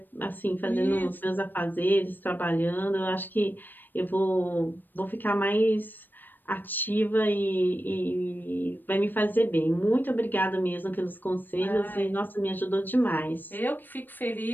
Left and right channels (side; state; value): right; late; 0.092 ms